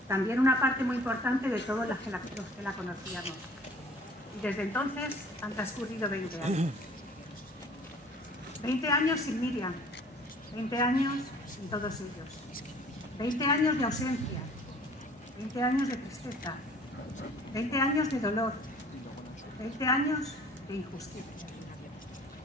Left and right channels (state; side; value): normal; both; correlation 0.51